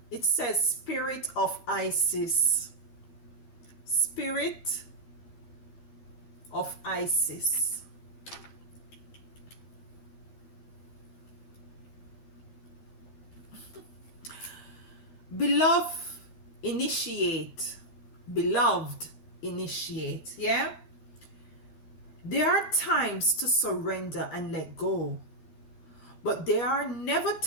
It says Spirit of Isis. Spirit of Isis. Beloved, initiate. Beloved, initiate. Yeah? There are times to surrender and let go, but there are never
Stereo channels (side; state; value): right; late; 12 ms